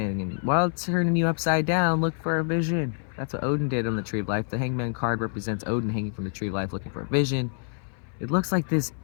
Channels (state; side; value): silent; right; 60 dB below the other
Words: And while it's turning you upside down, look for a vision. That's what Odin did on the Tree of Life. The hangman card represents Odin hanging from the Tree of Life looking for a vision. It looks like this